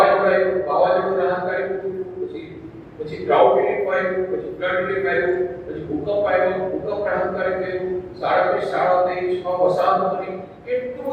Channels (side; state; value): both; identical; correlation 1.00